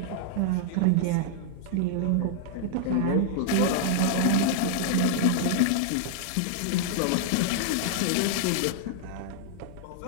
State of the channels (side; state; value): both; different; correlation -0.01